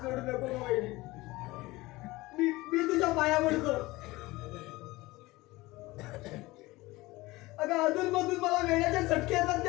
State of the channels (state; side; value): quieter; right; 20.3 dB